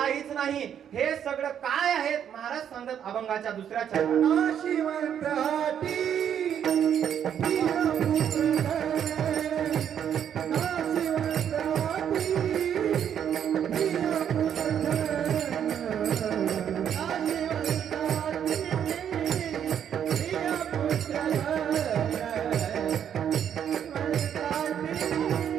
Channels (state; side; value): quieter; left; 9.0 dB